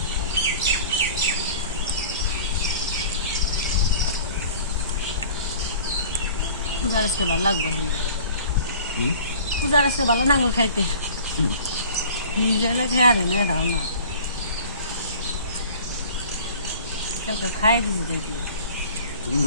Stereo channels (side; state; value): both; inverted; correlation -0.45